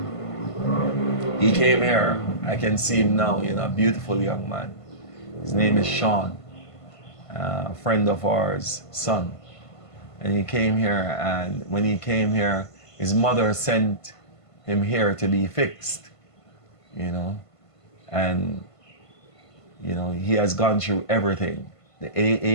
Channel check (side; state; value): right; late; 1.5 ms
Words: He came here. I can see him now, you know, a beautiful young man. His name is Sean, a friend of ours, son. And he came here, and when he came here, his mother sent him here to be fixed, you know. And you know, he has gone through everything. The